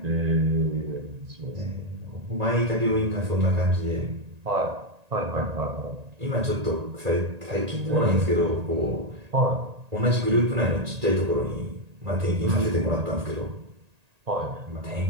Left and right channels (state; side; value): late; left; 1.8 ms